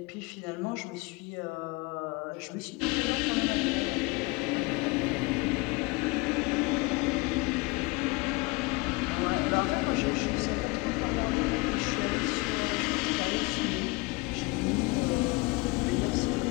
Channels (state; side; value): quieter; right; 25.5 dB